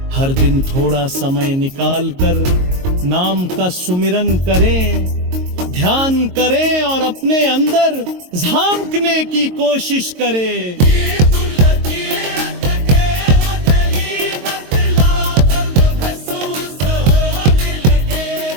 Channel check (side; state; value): left; late; 22 ms